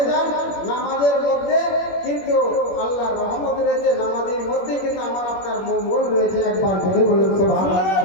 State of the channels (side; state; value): right; late; 21 ms